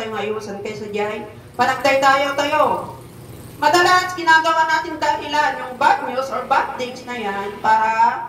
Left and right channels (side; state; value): both; identical; correlation 1.00